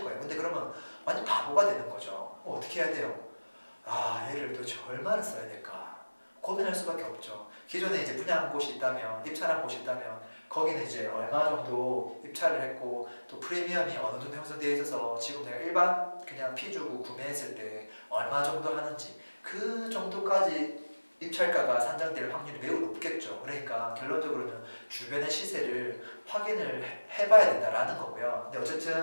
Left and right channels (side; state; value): both; inverted; correlation -1.00